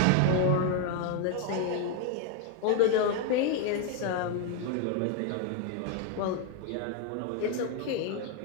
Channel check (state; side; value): different; both; correlation 0.01